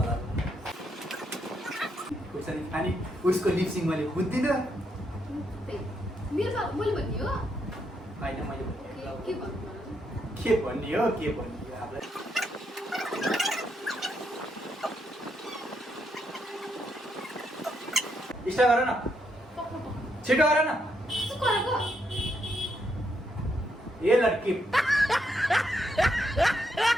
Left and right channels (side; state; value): both; normal; correlation 0.78